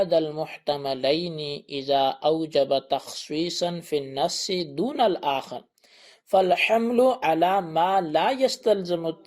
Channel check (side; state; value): both; identical; correlation 1.00